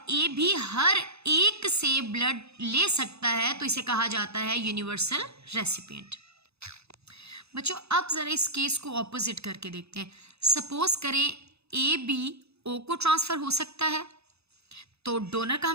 ए भी हर एक से ब्लड ले सकता है, तो इसे कहा जाता है यूनिवर्सल रेसिपिएंट। बच्चों अब ज़रा इस केस को ऑपोजिट करके देखते हैं। सपोज करें ए बी ओ को ट्रांसफ़र हो सकता है। तो डोनर का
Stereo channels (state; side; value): late; left; 0.79 ms